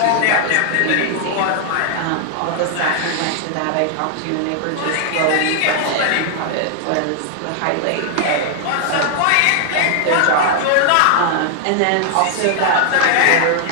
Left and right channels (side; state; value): both; different; correlation 0.00